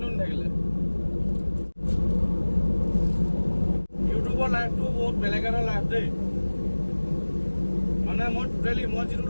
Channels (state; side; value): inverted; both; correlation -1.00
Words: থাকিলে। ইউটিউবৰ লাইফটো বহুত বেলেগ এটা লাইফ দেই। মানে মই যিটো